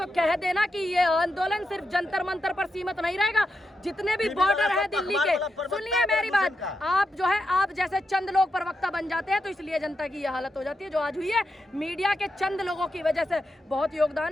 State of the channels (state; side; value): normal; both; correlation 0.86